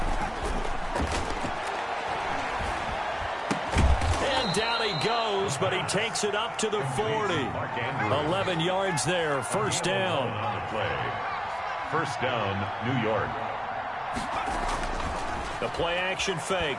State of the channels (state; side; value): identical; both; correlation 1.00